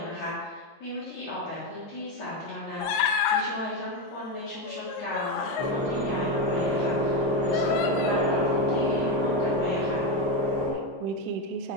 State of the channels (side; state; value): both; normal; correlation 0.10